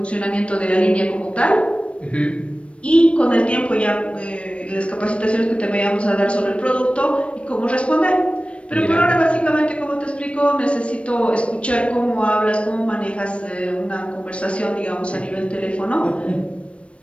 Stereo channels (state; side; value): late; right; 0.061 ms